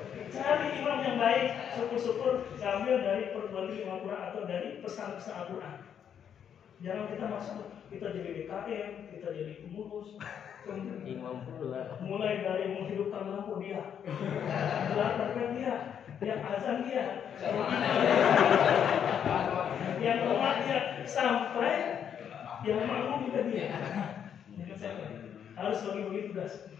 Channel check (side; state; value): right; quieter; 8.5 dB